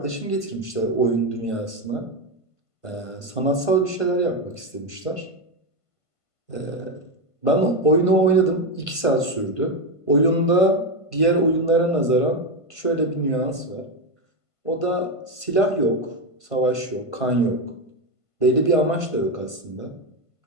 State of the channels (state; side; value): late; right; 1.5 ms